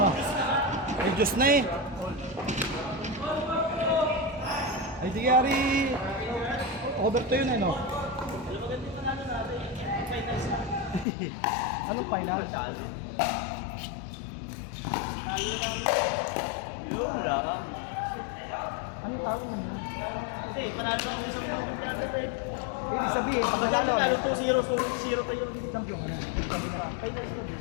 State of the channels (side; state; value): right; drops out; at 11.1 s